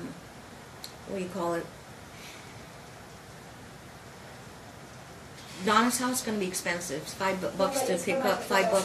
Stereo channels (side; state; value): both; identical; correlation 1.00